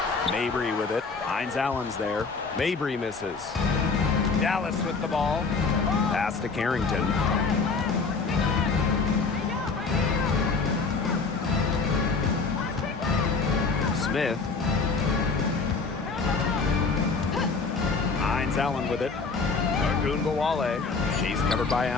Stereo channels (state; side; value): quieter; right; 4.5 dB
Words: Mabry with it. Hines Allen's there. Mabry misses. Dallas with the ball. Pass to Carrington. Smith. Hines Allen with it. Agubawale. She's covered by